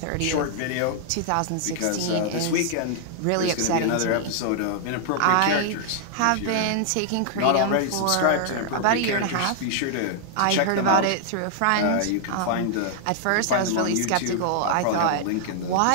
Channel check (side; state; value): both; different; correlation -0.01